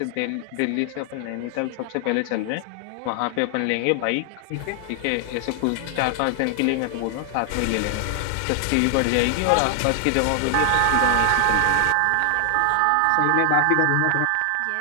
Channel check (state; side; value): different; both; correlation 0.00